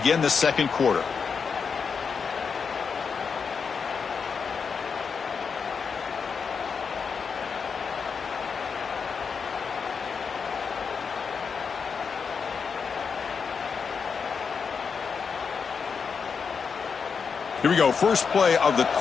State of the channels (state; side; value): quieter; right; 5.8 dB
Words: the second quarter. Here we go. First play of the